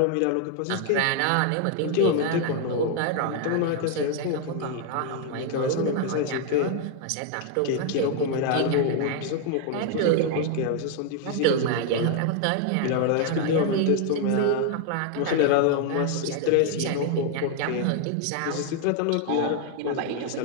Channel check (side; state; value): both; different; correlation 0.00